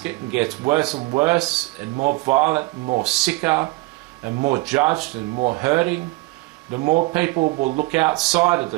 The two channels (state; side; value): quieter; left; 23.0 dB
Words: and gets worse and worse and more violent and more sicker and more judged and more hurting, the more people will look outside of